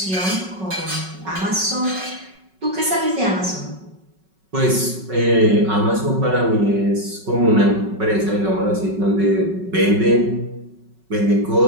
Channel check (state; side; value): late; left; 5.3 ms